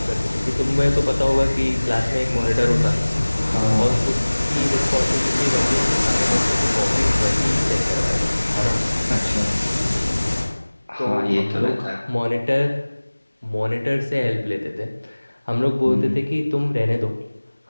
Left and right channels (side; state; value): both; inverted; correlation -1.00